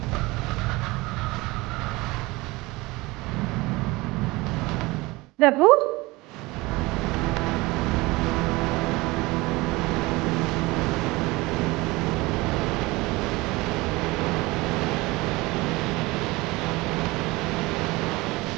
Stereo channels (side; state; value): left; quieter; 22.0 dB